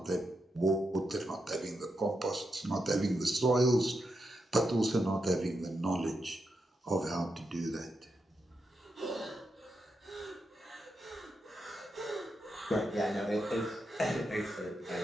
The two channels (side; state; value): both; normal; correlation 0.85